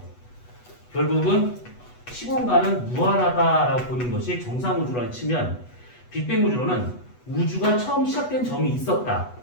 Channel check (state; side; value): late; right; 8.1 ms